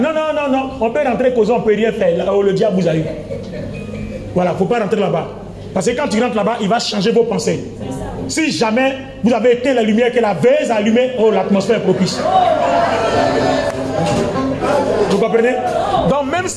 on peut rentrer causer, on ne peut rien faire. Là où le diable vous a eu. Voilà, il ne faut pas rentrer là-bas. Parce que quand tu rentres là-bas, il va changer vos pensées. Si jamais vous avez éteint la lumière que la veille a allumée, oh, l'atmosphère est propice. Vous comprenez? Donc même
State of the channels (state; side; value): identical; both; correlation 1.00